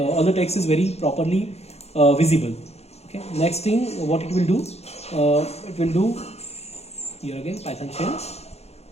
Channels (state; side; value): late; right; 0.31 ms